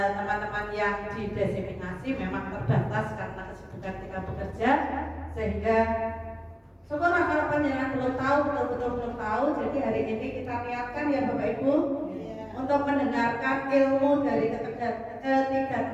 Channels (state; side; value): identical; both; correlation 1.00